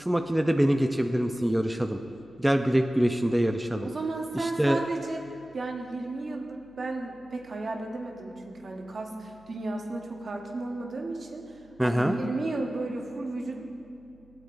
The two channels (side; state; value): right; noise; hum, 29 dB below the sound